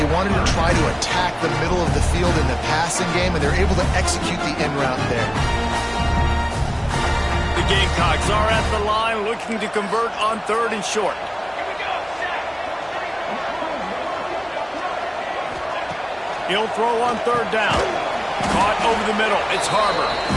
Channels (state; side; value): identical; both; correlation 1.00